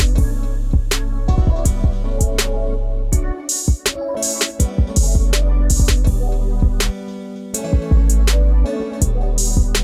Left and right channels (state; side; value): identical; both; correlation 1.00